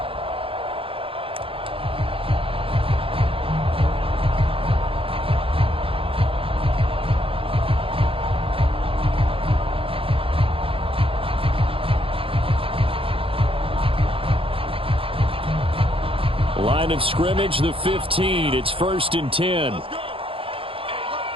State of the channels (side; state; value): left; late; 0.27 ms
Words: Line of scrimmage, the 15. It's 1st and 10.